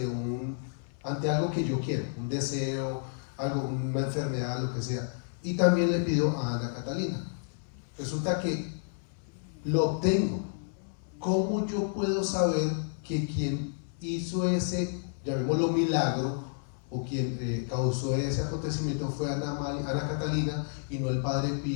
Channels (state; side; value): silent; right; 57 dB below the other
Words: ante algo que yo quiero, un deseo, algo, una enfermedad, lo que sea. Y también le pido a Ana Catalina. Resulta que lo obtengo. ¿Cómo yo puedo saber que quien hizo ese, llamémoslo milagro, o quien causó ese acontecimiento fue Ana Catalina y no el Padre